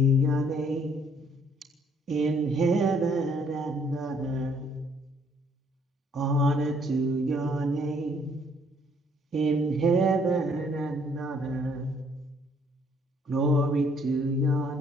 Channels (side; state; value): both; normal; correlation 0.64